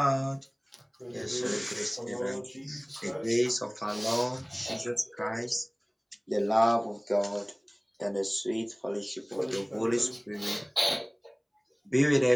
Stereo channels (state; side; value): identical; both; correlation 1.00